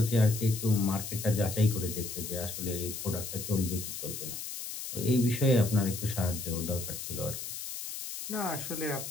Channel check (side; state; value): left; noise; hiss, 7 dB below the sound